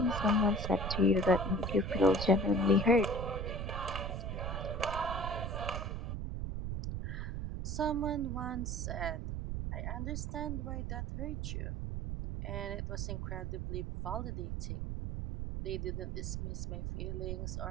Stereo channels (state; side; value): noise; right; rumble, 3 dB below the sound